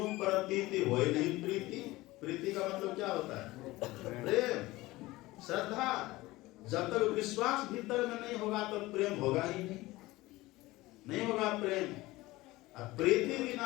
प्रतीति होई नहीं प्रीति। प्रीति का मतलब क्या होता है? प्रेम, श्रद्धा। जब तक विश्वास भीतर में नहीं होगा तो प्रेम होगा ही नहीं होगा प्रेम। प्रीति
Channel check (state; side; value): quieter; right; 19.3 dB